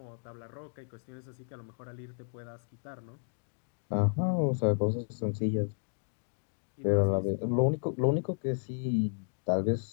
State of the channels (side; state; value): right; silent; digital silence